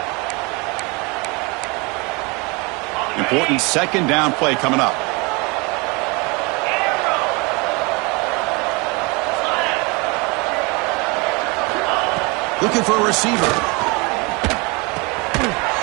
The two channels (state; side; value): quieter; left; 28.0 dB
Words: Important second down play coming up. Looking for a receiver.